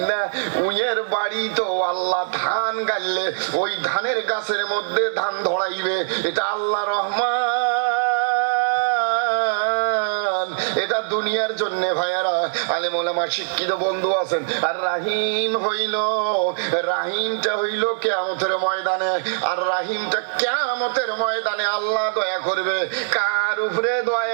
না, উইয়ের বাড়ি তো আল্লাহ ধান গাইলে ওই ধানের গাছের মধ্যে ধান ধরাইবে। এটা আল্লাহ রহমান, এটা দুনিয়ার জন্য ভাইয়ারা। আলেম ওলামা শিক্ষিত বন্ধু আছেন। আর রাহিম হইল, রাহিমটা হইল কিয়ামতের ময়দানে। আর রাহিমটা কিয়ামতের ময়দানে আল্লাহ দয়া করবে কার উপরে?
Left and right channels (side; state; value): left; silent; digital silence